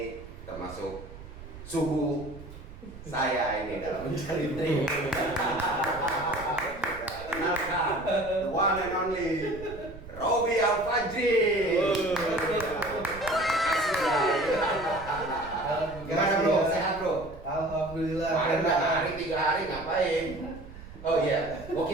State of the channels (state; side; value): noise; right; rumble, 15 dB below the sound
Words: termasuk suhu saya ini dalam mencari trik. Kenalkan, the one and only Robby Al-Fajri. Gimana bro? Sehat bro? Alhamdulillah. Kemarin 3 hari ngapain? Oh iya,